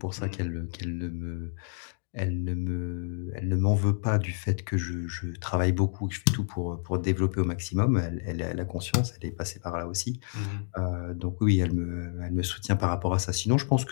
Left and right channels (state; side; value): silent; right; 59 dB below the other